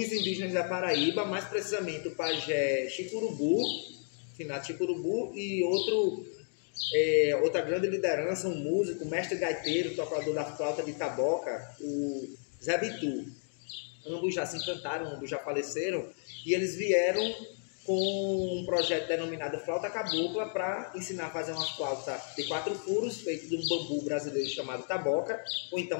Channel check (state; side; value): silent; right; 56 dB below the other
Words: indígenas da Paraíba, mais precisamente o pajé Chicurubu, finado Chicurubu, e outra grande liderança, um músico, mestre gaiteiro, tocador da flauta de taboca, o Zé Bitu. Ambos já se encantaram, ambos já faleceram, e eles vieram com um projeto denominado Flauta Cabocla para ensinar a fazer uma flauta de 4 furos, feita de um bambu brasileiro chamado taboca, ou